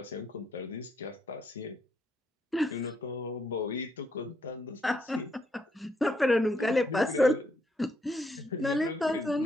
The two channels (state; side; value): normal; both; correlation 0.75